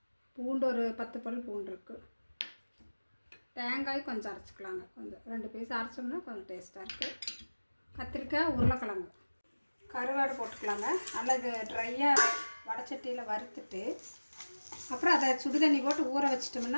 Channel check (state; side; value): inverted; both; correlation -1.00